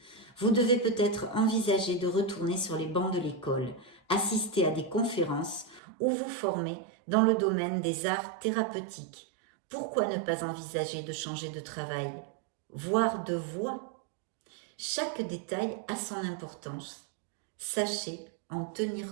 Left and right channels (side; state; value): left; drops out; at 5.8 s